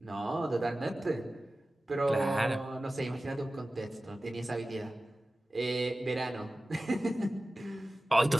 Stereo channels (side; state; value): both; normal; correlation 0.96